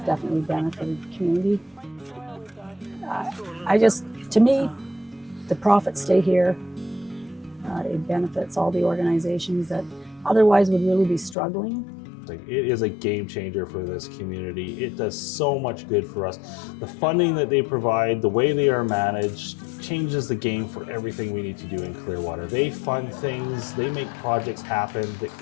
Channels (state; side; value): drops out; right; at 11.4 s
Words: definitely benefited the community. To me, the profits stay here. It benefits all the organizations that otherwise would really be struggling. It is a game changer for this community. It does so much good for us. The funding that they provide, the way they are managed, changes the game for everything we need to do in Clearwater. They fund things, they make projects happen that